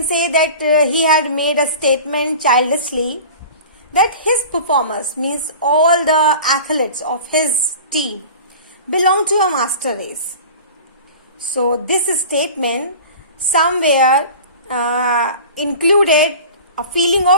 say that he had made a statement childishly that his performers, means all the athletes of his team, belong to a master race. So this statement somewhere included a feeling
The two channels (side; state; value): both; inverted; correlation -0.38